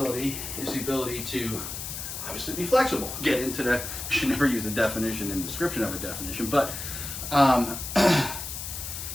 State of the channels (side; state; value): left; noise; hiss, 7 dB below the sound